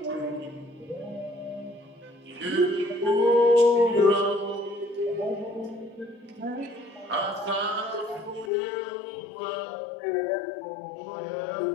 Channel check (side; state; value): right; drops out; at 8.5 s